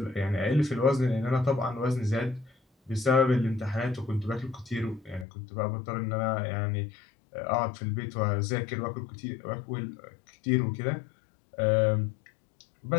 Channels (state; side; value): drops out; right; at 5.2 s